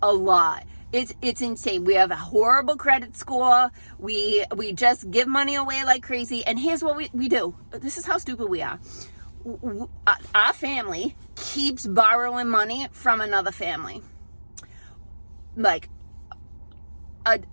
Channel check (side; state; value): both; inverted; correlation -1.00